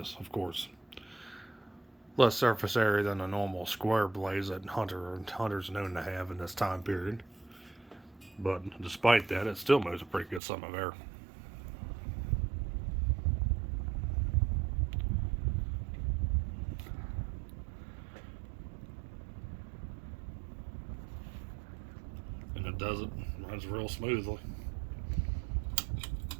of course, less surface area than the normal square blades that Hunter's known to have in this time period. But despite that, it still moves a pretty good sum of air. does it. Runs real smoothly.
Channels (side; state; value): left; drops out; at 10.4 s